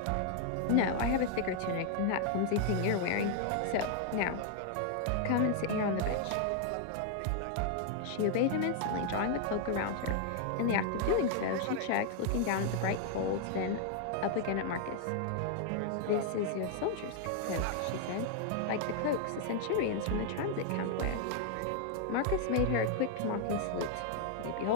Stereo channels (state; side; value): different; both; correlation 0.00